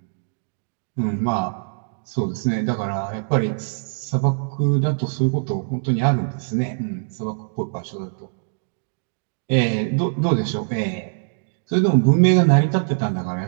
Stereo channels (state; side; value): silent; left; digital silence